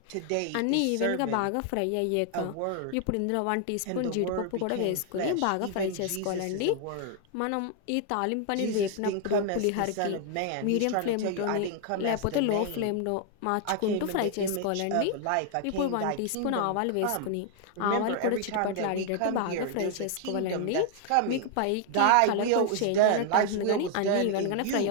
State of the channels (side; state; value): both; different; correlation 0.00